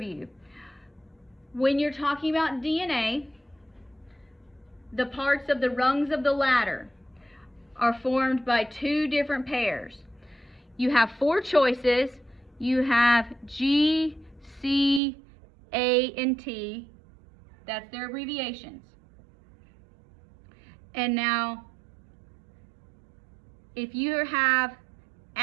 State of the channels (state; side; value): drops out; left; at 15.0 s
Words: When you're talking about DNA, the parts of the rungs of the ladder are formed by two different pairs. You have four choices. You have G, C, A, and T. That's their abbreviations. And now, if you have